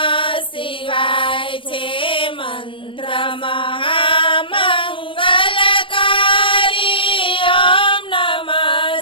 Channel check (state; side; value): late; right; 0.25 ms